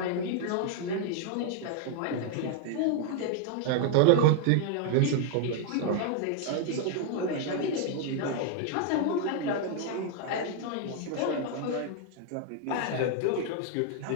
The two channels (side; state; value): both; different; correlation 0.00